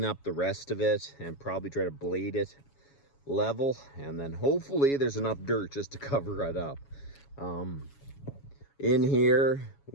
up the rest of it and probably try to blade it level, and then hopefully there's enough dirt just to cover it up. In here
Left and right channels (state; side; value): late; right; 7.2 ms